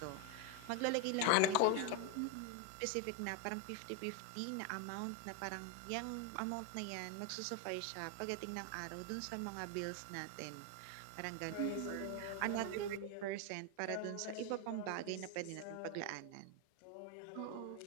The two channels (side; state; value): both; different; correlation 0.01